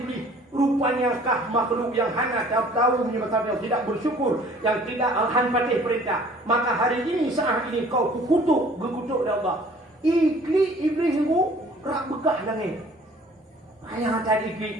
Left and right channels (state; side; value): normal; both; correlation 0.52